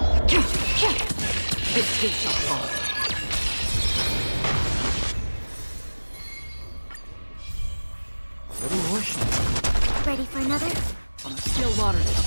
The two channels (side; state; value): both; inverted; correlation -1.00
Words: It too shall fall. Ready for another? From the still waters of